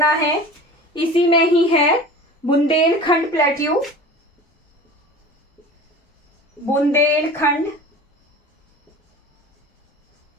है, इसी में ही है बुंदेलखंड प्लेट्यू, बुंदेलखंड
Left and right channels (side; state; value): both; normal; correlation 0.38